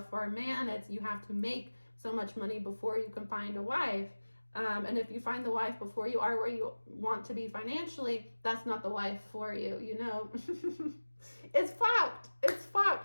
for a man, it's you have to make so much money before you can find a wife. And if you find the wife before you are where you want to be financially, that's not the wife for you, It's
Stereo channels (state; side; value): inverted; both; correlation -1.00